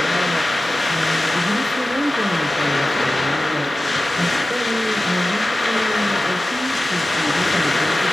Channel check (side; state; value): both; normal; correlation 0.95